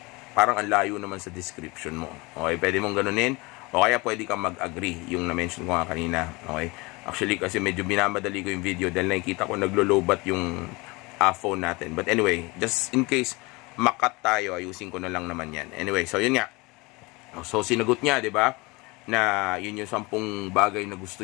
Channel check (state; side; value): quieter; right; 24.9 dB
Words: Parang ang layo naman sa description mo. Okay, pwede mong ganunin. O kaya pwede kang mag-agree, yung na-mention ko nga kanina. Okay? Actually, kasi medyo binamadali ko yung video dahil nakikita ko naglo-lowbat yung phone natin. But anyway, just in case makat tayo, ayusin ko na lang naman yan. Anyway, so yun nga. So sinagot niya, di ba? Na yun yung 10 bagay na gusto